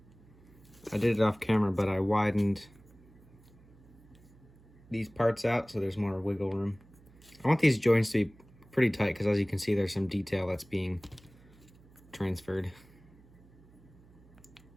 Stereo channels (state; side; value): noise; right; hum, 26 dB below the sound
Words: I did it off camera, but I widened these parts out so there's more wiggle room. I want these joints to be pretty tight because, as you can see, there's some detail that's being transferred.